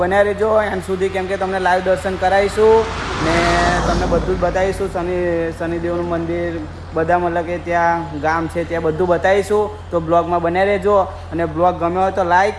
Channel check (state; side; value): identical; both; correlation 1.00